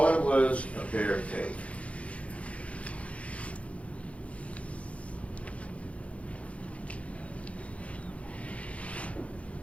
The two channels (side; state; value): right; late; 0.064 ms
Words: it was a bear take.